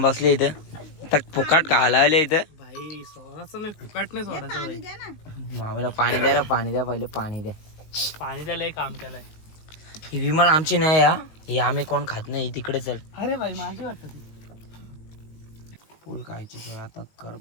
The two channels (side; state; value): right; late; 19 ms